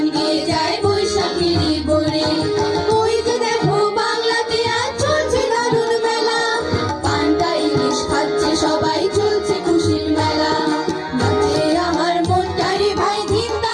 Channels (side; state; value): both; identical; correlation 1.00